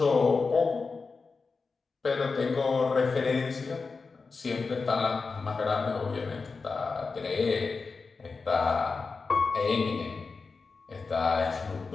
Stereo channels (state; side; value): quieter; right; 4.5 dB